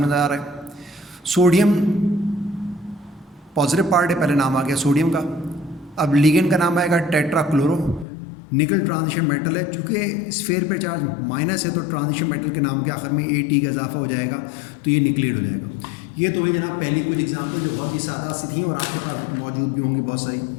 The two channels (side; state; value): right; drops out; at 8.1 s